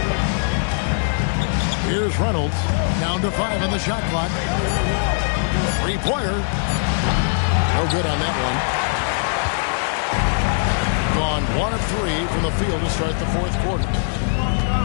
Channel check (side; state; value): right; silent; digital silence